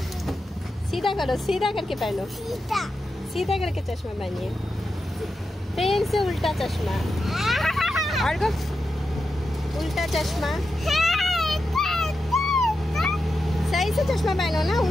सीधा करो, सीधा करके पहनो, सीधा करके चश्मा पहनिए, फिर से उल्टा चश्मा, और उल्टा चश्मा, सही से चश्मा पहनो ना,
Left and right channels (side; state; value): both; normal; correlation 0.88